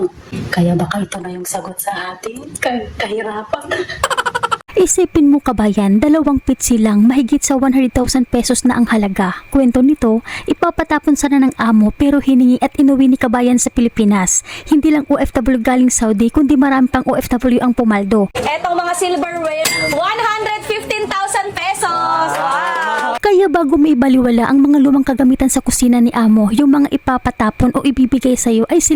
Kaya baka ito na yung sagot sa ating kahirapan. Isipin mo kabayan, 2 pitsi lang, mahigit sa 100,000 pesos na ang halaga. Kwento nito, ipapatapon sana ng amo pero hiningi at inuwi ni kabayan sa Pilipinas. Hindi lang OFW galing Saudi kundi marami pang OFW ang pumaldo. Etong mga silverware, 115,000 pesos. Wow! Kaya bago may baliwala ang mga lumang kagamitan sa kusina ni amo, yung mga ipapatapon o ibibigay sa iyo ay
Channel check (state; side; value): identical; both; correlation 1.00